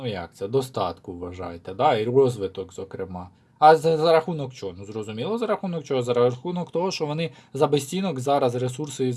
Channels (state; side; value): identical; both; correlation 1.00